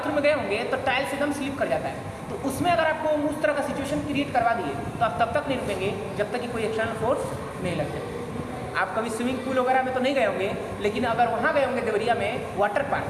में गए होंगे तो टाइल्स एकदम स्लिप कर जाता है, तो उसमें अगर आपको उस तरह का सिचुएशन क्रिएट करवा दिए तो आप तब तक नहीं रुकेंगे जब तक कि कोई एक्सटर्नल फोर्स नहीं लग जाए। आप कभी स्विमिंग पूल वगैरह में तो नहीं गए होंगे, लेकिन अगर वहाँ गए होंगे देवरिया में वाटर पार्क,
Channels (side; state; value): both; identical; correlation 1.00